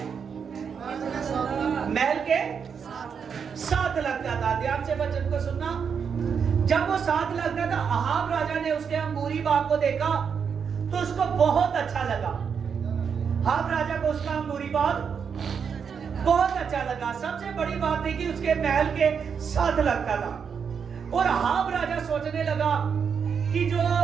महल के साथ लगता था। ध्यान से वचन को सुनना। जब वो साथ लगता था, अहाब राजा ने उसके अंगूरी बाग को देखा तो उसको बहुत अच्छा लगा। अहाब राजा को उसका अंगूरी बाग बहुत अच्छा लगा। सबसे बड़ी बात थी कि उसके महल के साथ लगता था, और अहाब राजा सोचने लगा कि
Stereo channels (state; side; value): quieter; left; 6.7 dB